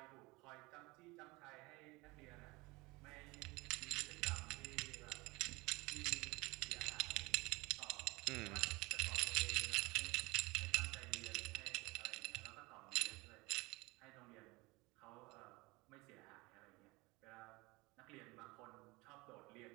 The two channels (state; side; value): quieter; left; 23.6 dB